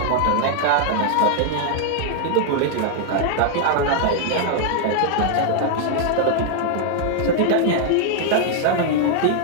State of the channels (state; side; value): different; both; correlation 0.00